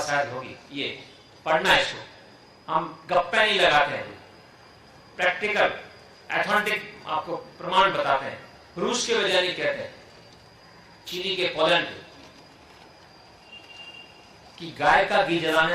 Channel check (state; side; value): identical; both; correlation 1.00